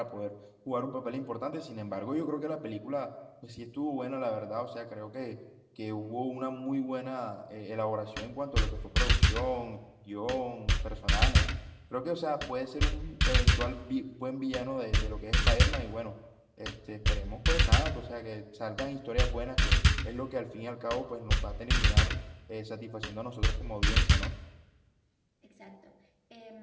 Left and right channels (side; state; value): both; identical; correlation 1.00